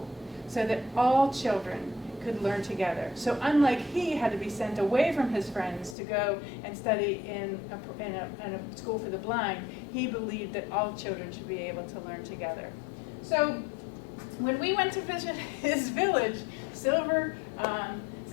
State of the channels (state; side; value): drops out; right; at 6.0 s